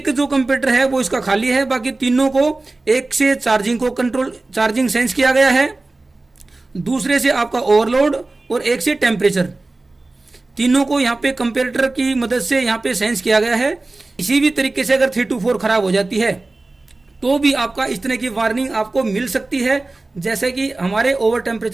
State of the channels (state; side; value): quieter; left; 3.2 dB